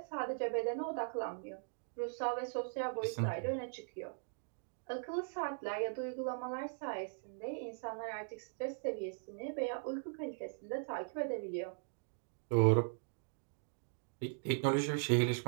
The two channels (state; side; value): silent; left; digital silence